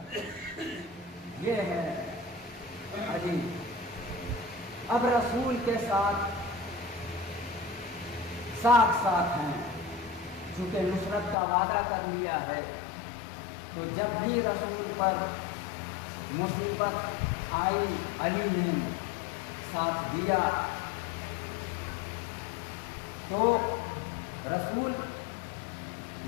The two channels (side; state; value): right; drops out; at 11.4 s